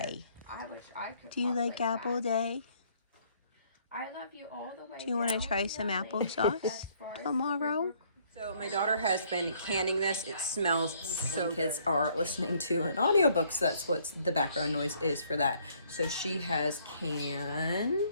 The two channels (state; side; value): inverted; both; correlation -0.64